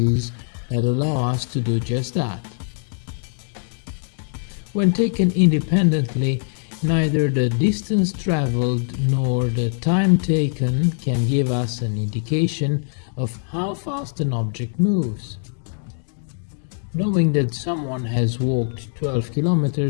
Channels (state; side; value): silent; right; 64 dB below the other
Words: that allow us to do just that. When taken independently, neither the distance traveled nor the time taken can give us an indication of how fast an object moves. Knowing that someone has walked 12